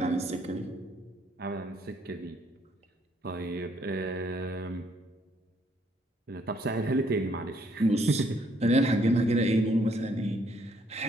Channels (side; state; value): both; normal; correlation 0.68